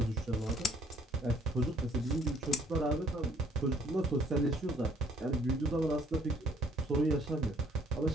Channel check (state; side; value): normal; both; correlation 0.61